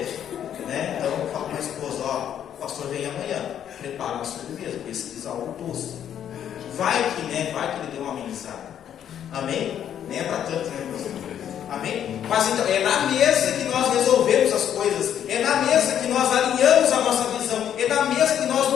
né? Então eu falo para a esposa, o pastor vem amanhã, prepara uma sobremesa, pesquisa algo doce. Vai que ele deu uma amenizada. Amém? Nem é para tanto, né, pastor? Amém? Mas então, é na mesa que nós resolvemos as coisas, é na mesa que nós alinhamos a nossa visão, é na mesa que nós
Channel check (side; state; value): right; quieter; 9.7 dB